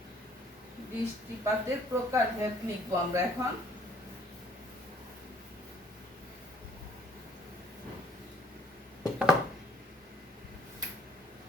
বৃষ্টিপাতের প্রকারভেদ লিখবো আমরা এখন।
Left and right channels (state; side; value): normal; both; correlation 0.60